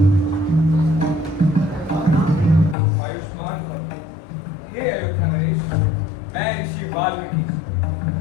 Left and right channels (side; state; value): right; drops out; at 2.8 s